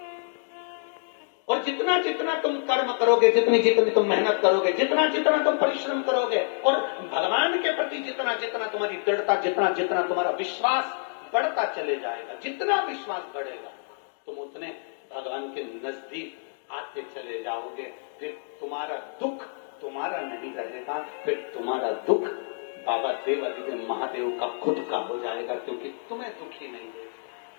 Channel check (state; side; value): silent; right; digital silence